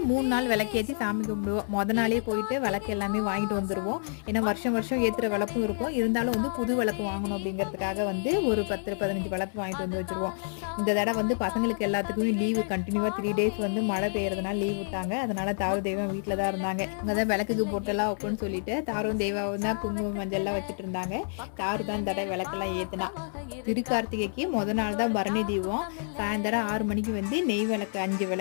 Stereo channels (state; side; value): silent; right; 57 dB below the other